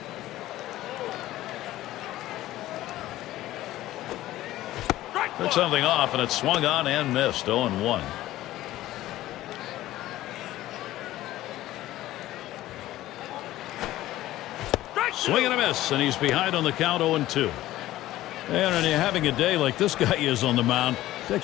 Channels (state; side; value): quieter; right; 15.3 dB